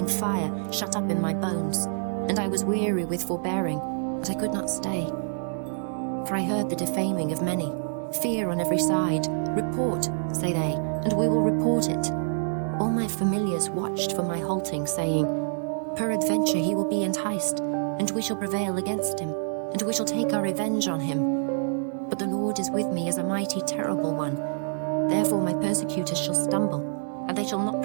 fire shut up in my bones, and I was weary with forbearing, but I could not stay. For I heard the defaming of many, fear on every side. Report, say they, and we will report it. All my familiars watched for my halting, saying, Peradventure he will be enticed, and we shall prevail against him, and we shall take our revenge on him. But the Lord is with me as a mighty terrible one. Therefore my persecutors shall stumble, and they shall not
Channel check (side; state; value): left; silent; digital silence